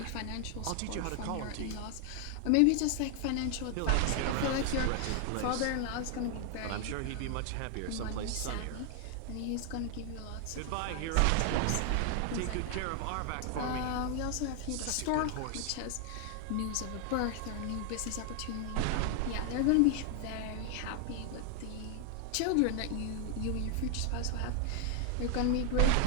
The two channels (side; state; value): both; different; correlation 0.00